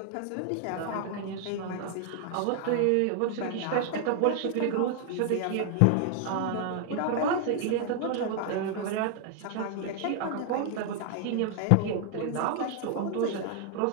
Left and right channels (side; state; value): both; different; correlation 0.00